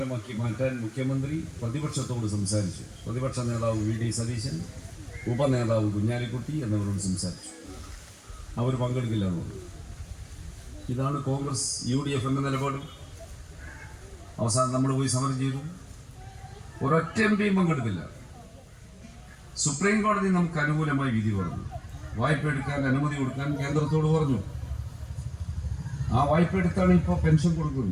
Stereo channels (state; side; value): identical; both; correlation 1.00